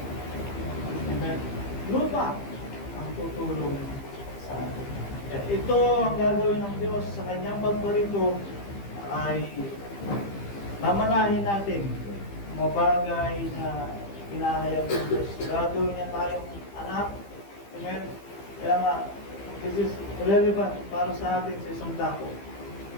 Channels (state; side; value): late; right; 15 ms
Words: Amen. Lupa ang tutulong sa atin. Ito ang gagawin ng Diyos sa kanyang pagparito ay mamanahin natin mga bagay na hinahayag ng Diyos. Gagawin niya tayong anak. Amen. Kaya nga, this is relevant para sa atin sa isang dako.